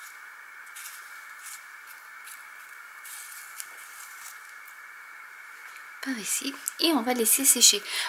Par ici, et on va laisser sécher.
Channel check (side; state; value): both; identical; correlation 1.00